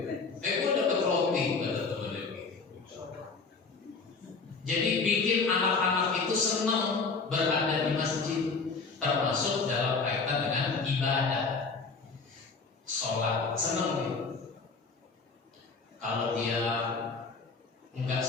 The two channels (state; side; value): quieter; right; 4.5 dB